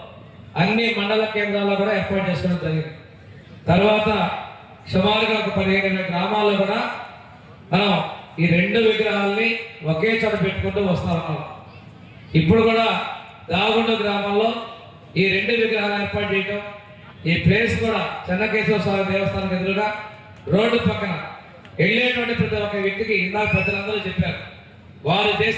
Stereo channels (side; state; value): both; identical; correlation 1.00